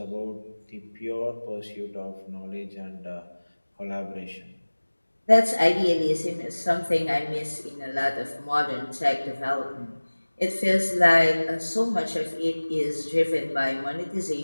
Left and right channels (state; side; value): inverted; both; correlation -1.00